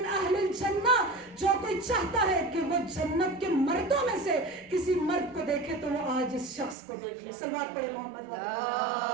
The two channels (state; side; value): drops out; left; at 6.8 s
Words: اہل الجنہ، جو کوئی چاہتا ہے کہ وہ جنت کے مردوں میں سے کسی مرد کو دیکھے تو وہ آج اس شخص کو دیکھ لے. صلوات پڑھے محمد